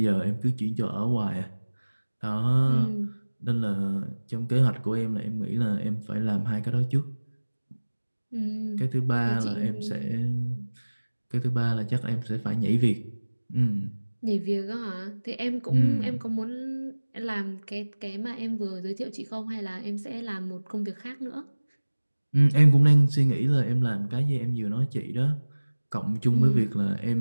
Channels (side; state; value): both; inverted; correlation -1.00